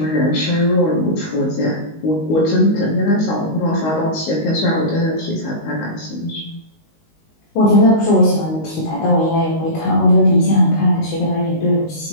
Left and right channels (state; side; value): late; right; 19 ms